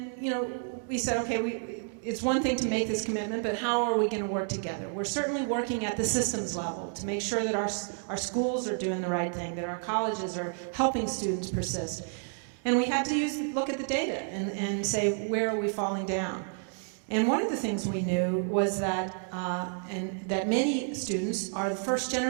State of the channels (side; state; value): left; silent; 58 dB below the other